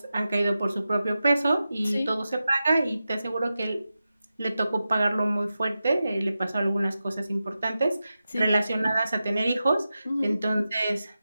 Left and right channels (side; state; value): both; inverted; correlation -0.92